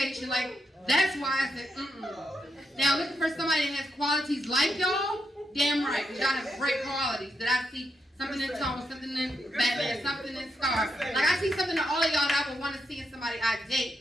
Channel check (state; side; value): normal; both; correlation 0.83